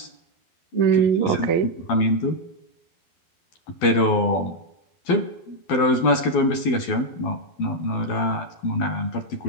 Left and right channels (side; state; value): right; late; 12 ms